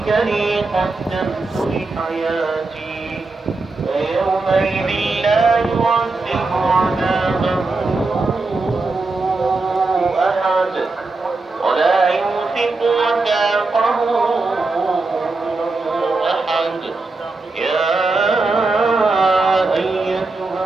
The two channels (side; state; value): left; quieter; 3.5 dB